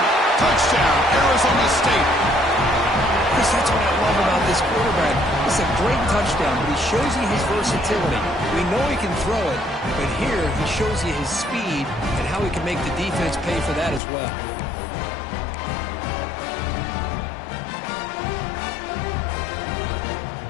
Touchdown, Arizona State. Chris, that's what I love about this quarterback. It's a great touchdown, but he shows you his versatility. We know he can throw it, but here he shows you his speed and how he can make the defense pay for that as well.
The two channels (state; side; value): drops out; right; at 14.0 s